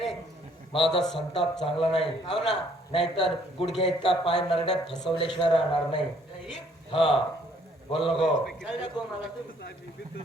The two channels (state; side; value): normal; both; correlation 0.63